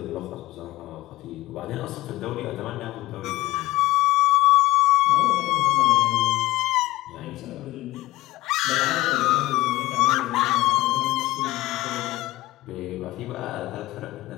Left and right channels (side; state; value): right; quieter; 17.7 dB